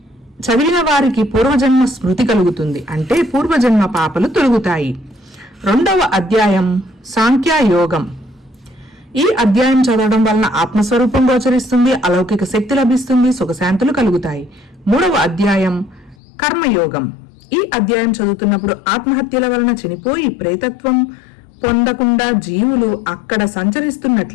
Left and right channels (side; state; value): right; drops out; at 16.2 s